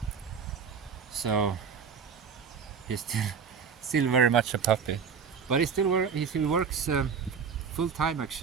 So he's still very much a puppy. But he still works full time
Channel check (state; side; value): quieter; left; 6.3 dB